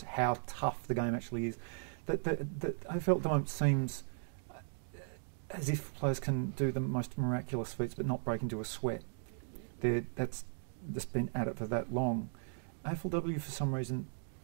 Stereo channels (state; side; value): silent; left; digital silence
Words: how tough the game actually is. That AFL at the moment seems as if players can do the most miraculous feats but not break into a sweat. That's just been at it for that long. AFLW for some reason